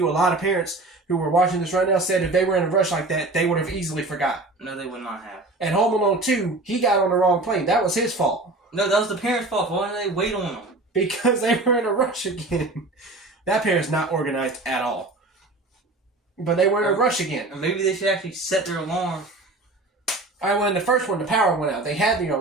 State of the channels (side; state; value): left; quieter; 3.0 dB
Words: a lot of parents who were watching this right now said if they were in a rush like that, they would have easily forgot. No, they would not have. And Home Alone 2, he got on the wrong plane. That was his fault. No, that was the parents' fault. Why didn't they wait on him? Because they were in a rush again. That parent's not organized at all. But they were in a rush again. Or maybe they should actually set their alarm. Alright, well, in the first one, the power went out. They had the